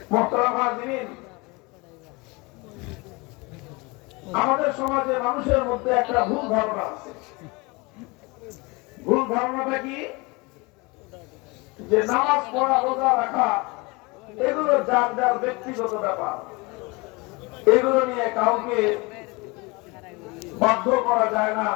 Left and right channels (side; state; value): right; quieter; 26.1 dB